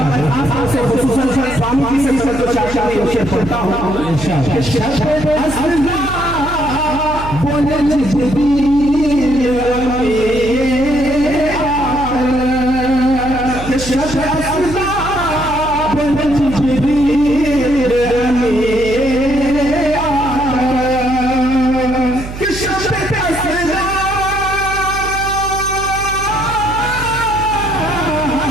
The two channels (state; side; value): noise; right; hum, 10 dB below the sound